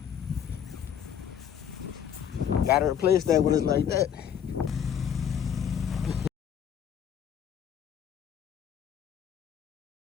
Gotta replace that when it's like that.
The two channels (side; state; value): right; quieter; 8.7 dB